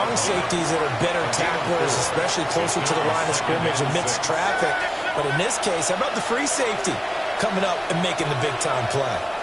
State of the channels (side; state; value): both; identical; correlation 1.00